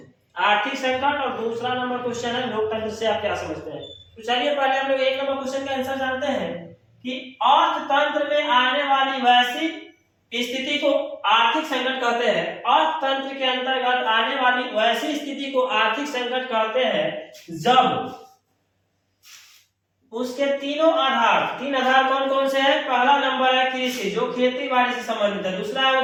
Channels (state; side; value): identical; both; correlation 1.00